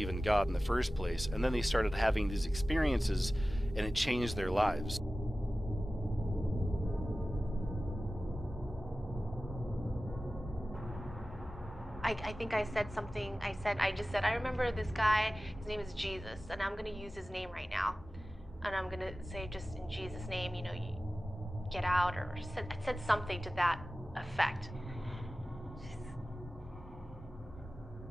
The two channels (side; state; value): both; normal; correlation 0.96